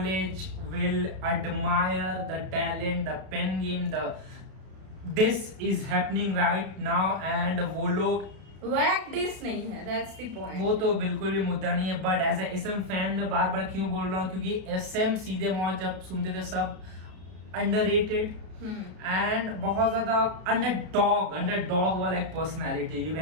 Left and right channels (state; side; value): late; left; 32 ms